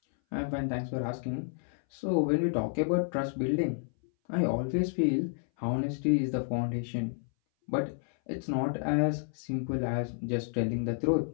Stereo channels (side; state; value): right; silent; 57 dB below the other